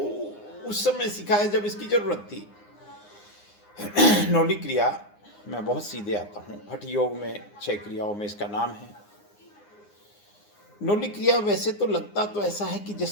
उस समय सिखाया जब इसकी जरूरत थी। न्योली क्रिया मैं बहुत सीधे आता हूँ। हठ योग में 6 क्रियाओं में इसका नाम है। न्योली क्रिया वैसे तो लगता तो ऐसा है कि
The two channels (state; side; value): late; right; 9.7 ms